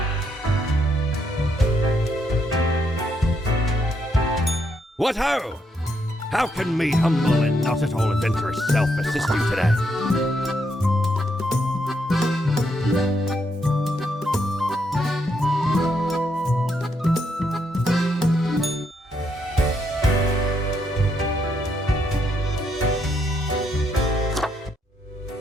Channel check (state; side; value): normal; both; correlation 0.77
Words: What ho! How can me humble and not at all adventurous self assist you today?